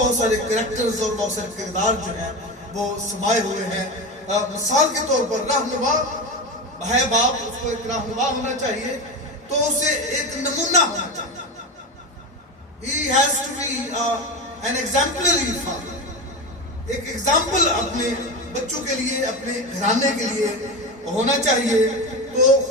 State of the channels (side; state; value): both; normal; correlation 0.21